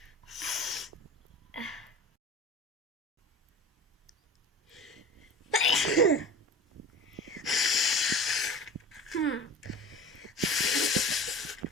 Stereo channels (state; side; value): normal; both; correlation 0.38